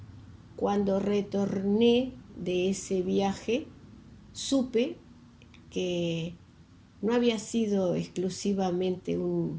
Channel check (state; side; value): identical; both; correlation 1.00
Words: cuando retorné de ese viaje supe que no había sido exclusivamente